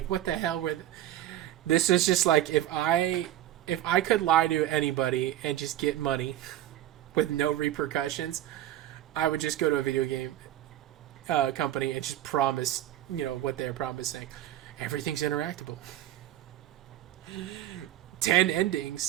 what the hell were? This is just like if I could lie to anybody and just get money with no repercussions, I would just go to a video game company and just promise, you know, what they're promising. Everything's interactable. 10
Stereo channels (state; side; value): quieter; left; 13.0 dB